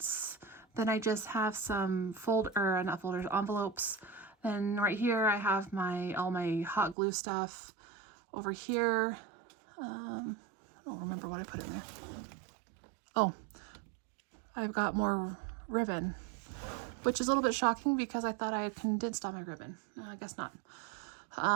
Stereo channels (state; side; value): drops out; left; at 7.0 s